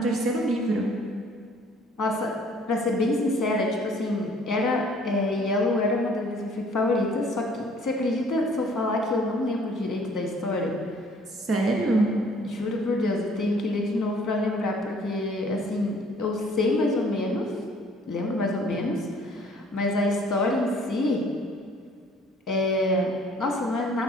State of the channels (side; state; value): both; normal; correlation 0.56